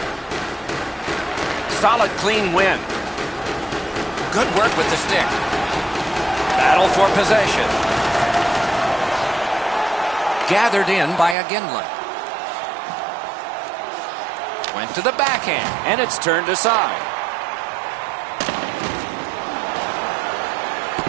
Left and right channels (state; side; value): drops out; left; at 11.4 s